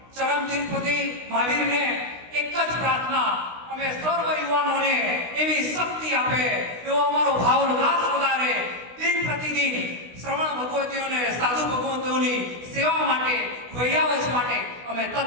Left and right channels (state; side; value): late; left; 16 ms